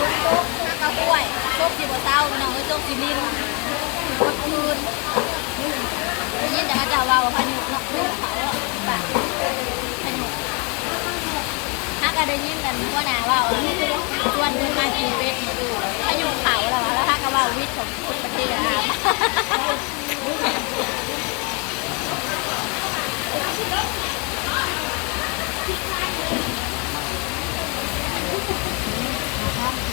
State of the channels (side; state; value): right; quieter; 32.9 dB